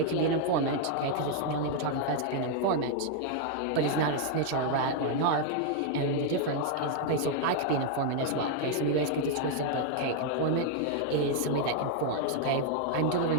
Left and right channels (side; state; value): both; different; correlation 0.00